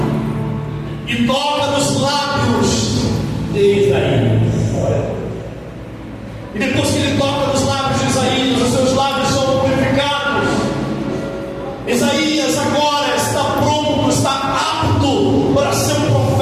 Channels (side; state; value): both; identical; correlation 1.00